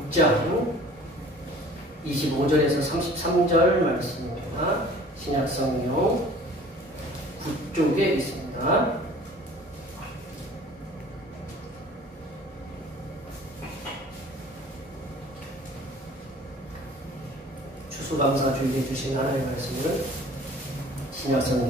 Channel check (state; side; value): normal; both; correlation 0.48